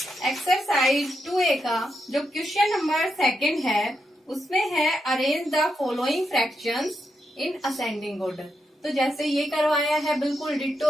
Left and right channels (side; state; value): both; normal; correlation 0.83